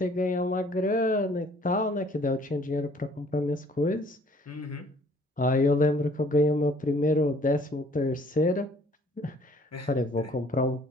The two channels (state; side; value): normal; both; correlation 0.58